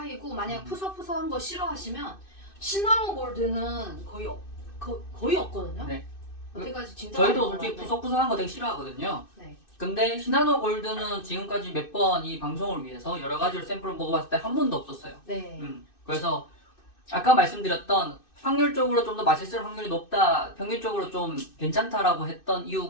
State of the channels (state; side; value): late; right; 2.6 ms